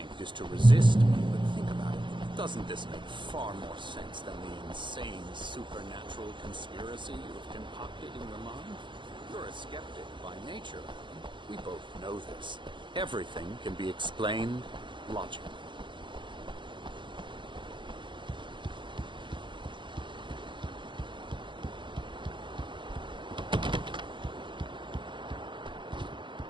is to resist me, but think about it. Doesn't this make far more sense than the insane supernatural conspiracy you have concocted in your mind? You're a skeptic by nature. We both know this. Everything can be explained logically.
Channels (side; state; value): left; late; 0.23 ms